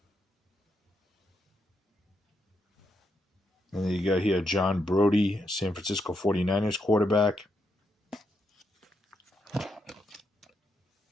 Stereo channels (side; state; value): both; normal; correlation 0.81